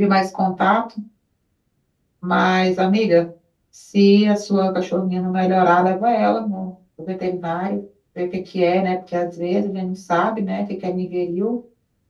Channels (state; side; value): identical; both; correlation 1.00